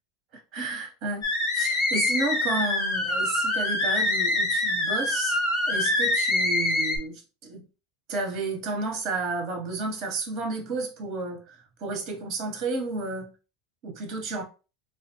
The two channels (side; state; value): both; normal; correlation 0.32